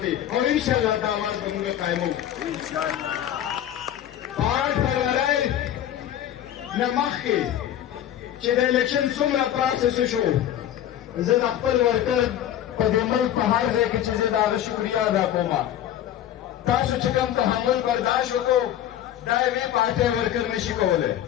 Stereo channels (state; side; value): quieter; right; 11.4 dB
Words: دی او انشاءالله دا آواز به موږ قایموو. 8 فروری نه مخکې چې د الیکشن څومره پروسس شو، زه د خپل ورکر په دې ملک په هر ځای کې چې زه د هغه شکریه ادا کوم. تاسو چې کوم تحمل برداشت وکړو دا یوې پارټۍ ورکر نشي کولی.